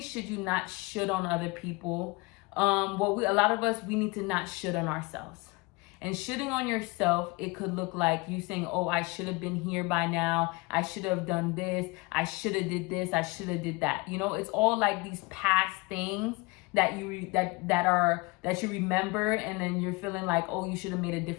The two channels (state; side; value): quieter; right; 25.5 dB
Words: should you not shit on other people, a lot of us, we need to not shit on ourselves. And shitting on yourself, it could look like you saying, oh, I should have been here by now. I should have done this. I should have did this. I should have did that. You know, it's all like these past things that you that you remember, and then you're feeling like, oh, you should have made a